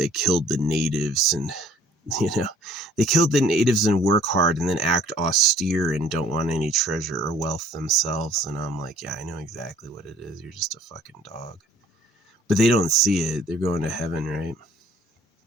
killed the natives, and they killed the natives and work hard and then act austere and don't want any treasure or wealth themselves. And I'm like, yeah, I know exactly what it is. You're just a fucking dog. But they don't see it. They're going to heaven, right?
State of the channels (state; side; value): normal; both; correlation 0.55